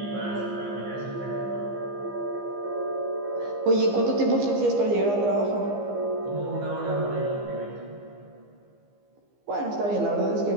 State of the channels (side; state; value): left; late; 15 ms